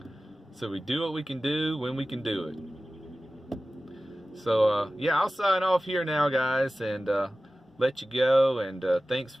So we do what we can do when we can do it. So yeah, I'll sign off here now, guys, and let you go. And thanks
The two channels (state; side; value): normal; both; correlation 0.96